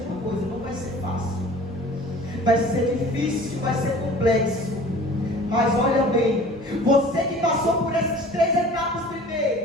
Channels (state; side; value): normal; both; correlation 0.45